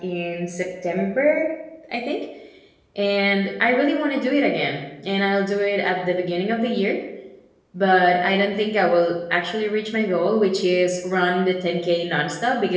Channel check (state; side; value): identical; both; correlation 1.00